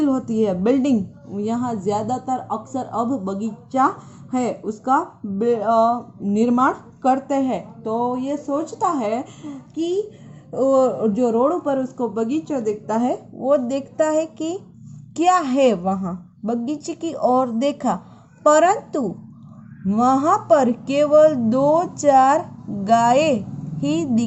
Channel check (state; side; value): identical; both; correlation 1.00